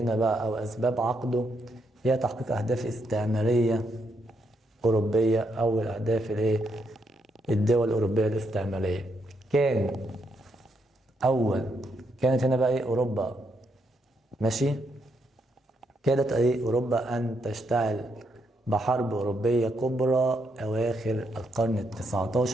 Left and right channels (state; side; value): normal; both; correlation 0.78